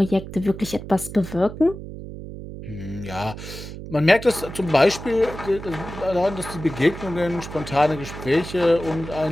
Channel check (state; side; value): noise; right; hum, 11 dB below the sound